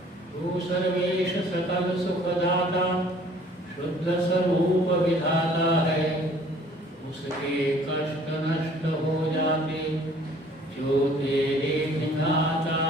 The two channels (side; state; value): both; normal; correlation 0.55